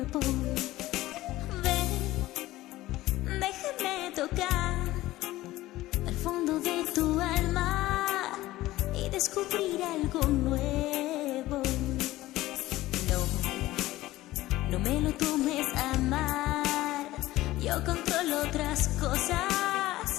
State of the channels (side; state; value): right; quieter; 16.8 dB